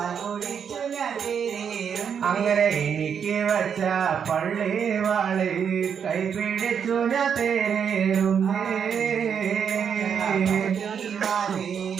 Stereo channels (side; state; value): left; quieter; 7.4 dB